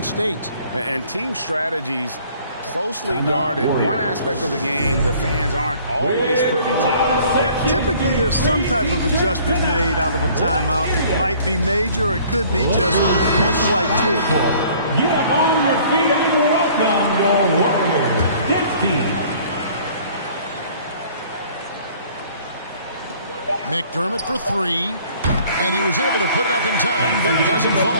State. And team strategies closely guarded. One aspect of the game the fans aren't always privy to. Typically, there's some type of adjustment made out of a timeout. It might be major, or it could be just a slight tweak. Get up on your feet and welcome your Warriors dance team. McDermott for 3. And he was able to put it up in time, but it doesn't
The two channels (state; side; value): inverted; both; correlation -0.54